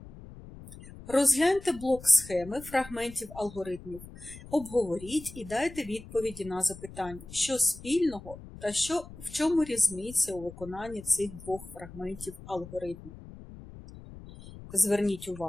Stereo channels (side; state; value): left; noise; rumble, 16 dB below the sound